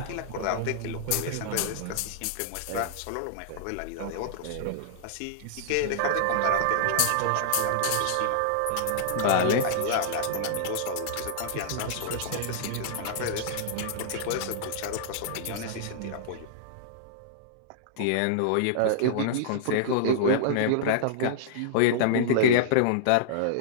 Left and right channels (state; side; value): different; both; correlation -0.02